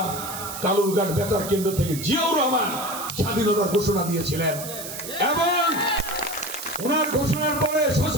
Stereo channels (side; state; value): right; noise; hiss, 9 dB below the sound